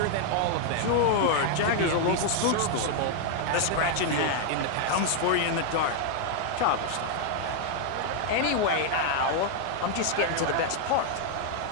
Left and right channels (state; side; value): different; both; correlation 0.00